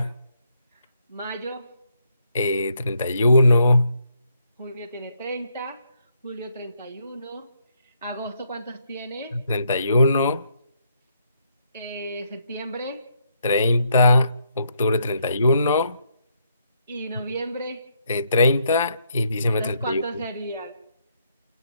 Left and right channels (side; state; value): both; inverted; correlation -0.75